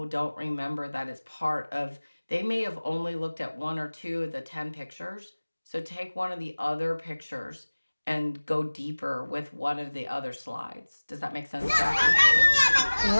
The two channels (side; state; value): both; inverted; correlation -1.00